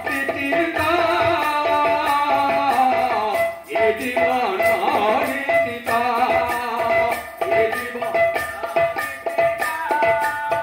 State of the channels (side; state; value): both; identical; correlation 1.00